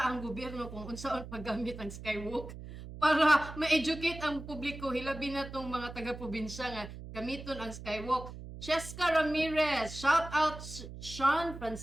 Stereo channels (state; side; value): noise; right; hum, 12 dB below the sound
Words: ang gobyerno kung unsaon paggamit ang skywalk para ma-educate ang publiko hilabi na tong mga taga-probinsya nga gamiton ang skywalk. Cheska Ramirez, shout out Sean